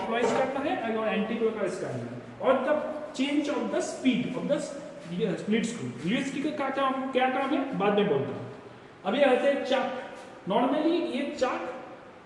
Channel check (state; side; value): identical; both; correlation 1.00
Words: करना है और एंटी क्लॉकवाइज करना है, और the change of the speed of the lead screw. Lead screw का क्या काम है बाद में बोलता हूँ। अभी आते हैं चाक। नॉर्मली ये चाक